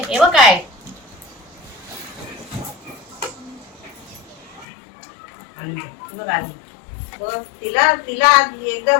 ये बघ काय बघ आली बघ. तिला तिला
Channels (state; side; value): drops out; right; at 4.7 s